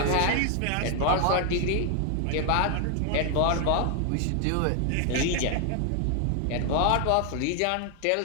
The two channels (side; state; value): both; different; correlation 0.00